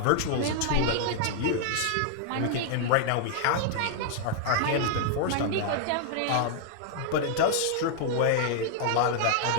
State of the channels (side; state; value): both; different; correlation 0.00